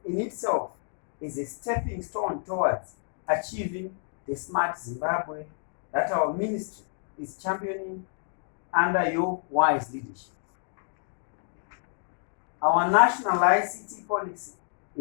in itself is a stepping stone towards achieving the smart Zimbabwe that our ministry is championing under your wise leadership. Our national ICT policy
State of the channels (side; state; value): right; silent; 59 dB below the other